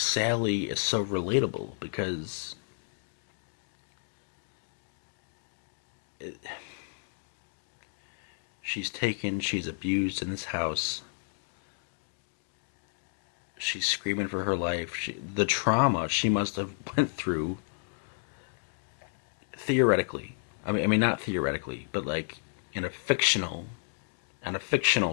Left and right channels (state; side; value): silent; right; digital silence